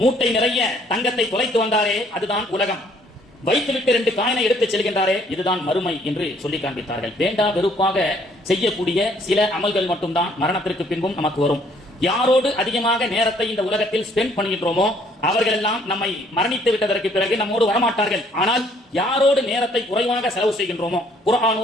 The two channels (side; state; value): both; normal; correlation 0.63